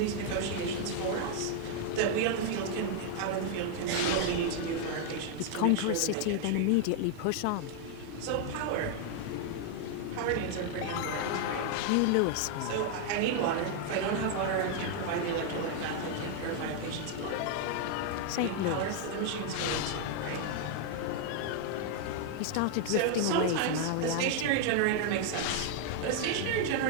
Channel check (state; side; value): different; both; correlation 0.00